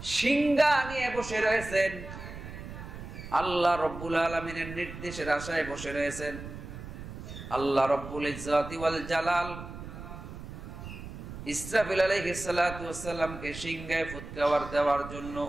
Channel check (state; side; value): noise; right; rumble, 11 dB below the sound